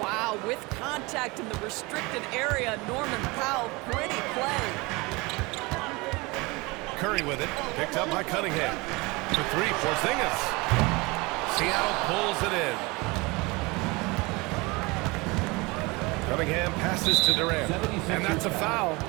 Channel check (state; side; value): quieter; left; 24.9 dB